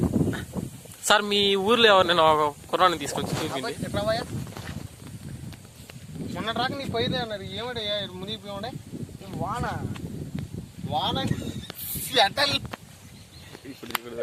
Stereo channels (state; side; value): identical; both; correlation 1.00